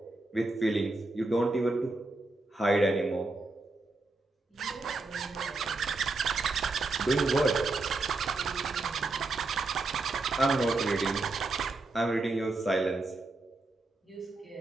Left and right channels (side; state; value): left; quieter; 3.2 dB